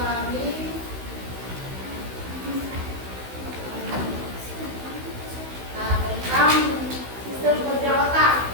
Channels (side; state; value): left; late; 16 ms